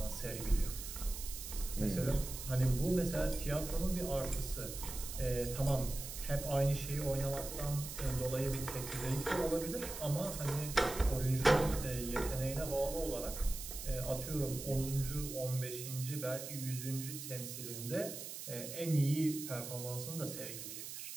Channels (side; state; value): right; noise; hiss, 8 dB below the sound